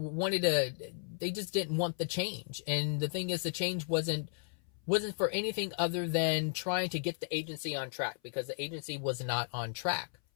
just didn't want the change. And the thing is, the change wasn't for anything other than trying to get the agency on track, because the agency was not on track.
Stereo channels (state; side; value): silent; right; 55 dB below the other